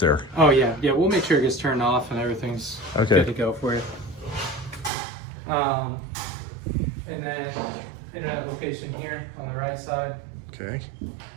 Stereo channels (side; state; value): left; drops out; at 4.9 s